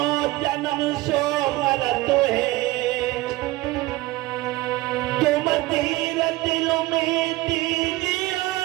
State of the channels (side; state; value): left; quieter; 19.3 dB